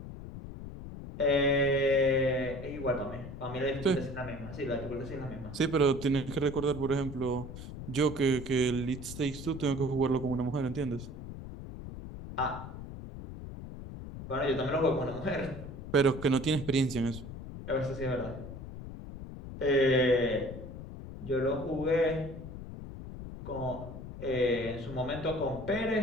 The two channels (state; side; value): noise; left; rumble, 10 dB below the sound